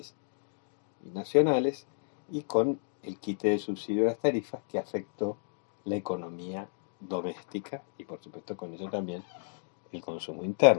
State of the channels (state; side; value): silent; right; digital silence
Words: y nacionales, y con el quite de subsidio de las tarifas que afectó la economía doméstica y por supuesto con ello también el consumo